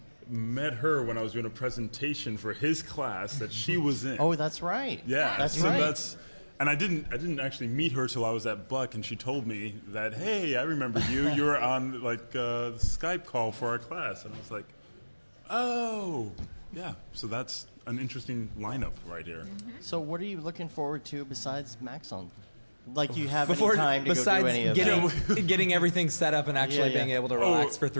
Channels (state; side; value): inverted; both; correlation -1.00